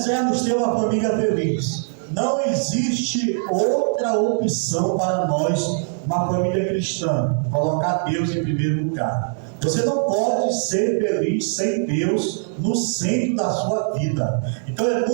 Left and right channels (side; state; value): left; silent; digital silence